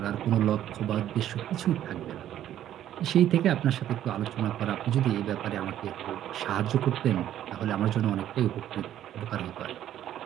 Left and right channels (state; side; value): quieter; left; 11.6 dB